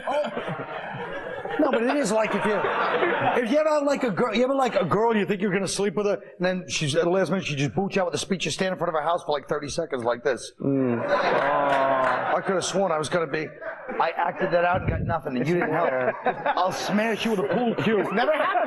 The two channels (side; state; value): both; identical; correlation 1.00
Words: No, but it is like if you ever like a girl, you think you're going to sleep with her, and then she's at the last minute she just boots you out with a speech. You stand in front of her house for like 30 seconds like this. I could have sworn I was going to be. I acted that out and got nothing, and you didn't help. I'll smash you with a pool cue. It's never